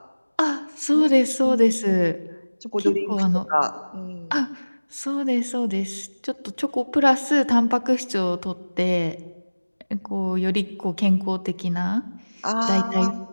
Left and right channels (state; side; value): inverted; both; correlation -1.00